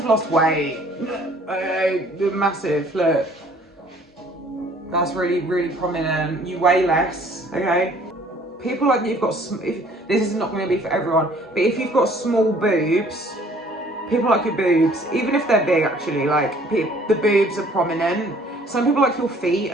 lost weight. Massive, look. That's really, really prominent. You weigh less, okay? people like you've got, this is not going to be for everyone, but if you've got small boobs, people like your boobs, even if they're big actually, like the boobs are prominent. Some people like your feet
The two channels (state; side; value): normal; both; correlation 0.56